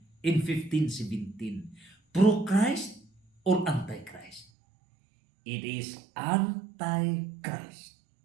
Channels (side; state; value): left; drops out; at 4.5 s